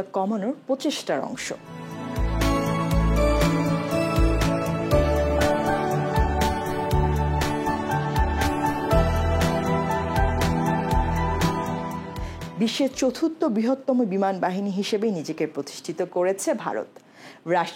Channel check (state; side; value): identical; both; correlation 1.00